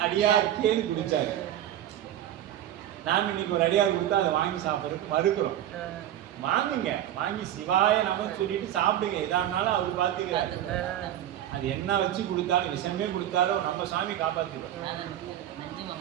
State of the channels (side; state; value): left; quieter; 11.8 dB